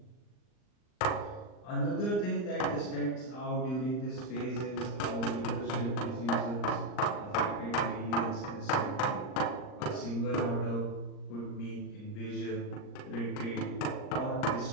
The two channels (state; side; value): late; right; 39 ms